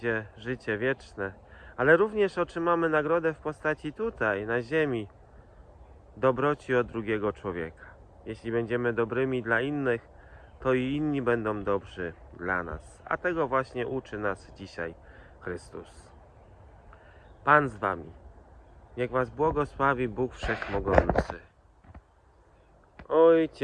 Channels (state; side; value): identical; both; correlation 1.00